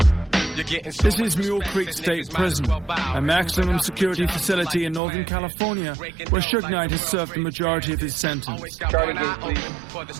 This is Mule Creek State Prison, a maximum security facility in Northern California where Suge Knight has served the majority of his sentence.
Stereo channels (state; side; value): drops out; left; at 5.0 s